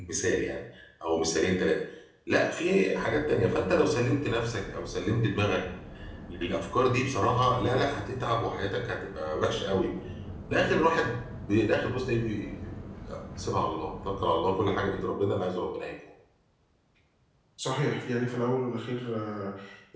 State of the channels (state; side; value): identical; both; correlation 1.00